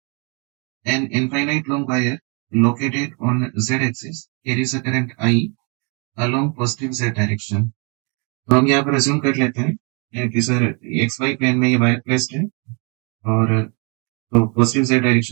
an infinite long wire located on z axis carries a current I along positive z direction। तो हम यहाँ पर अज्यूम कर लेते हैं कि सर एक्स वाई प्लेन में ये वायर प्लेस्ड है और तो पॉजिटिव z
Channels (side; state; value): left; quieter; 34.1 dB